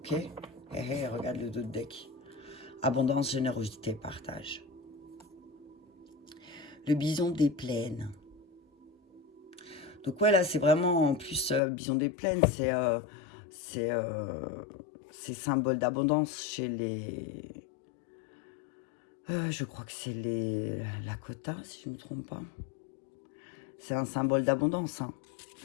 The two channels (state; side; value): drops out; right; at 11.6 s